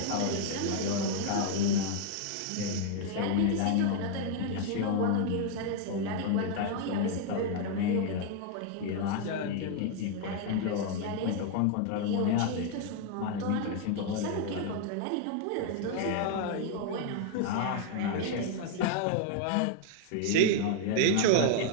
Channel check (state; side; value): different; both; correlation 0.00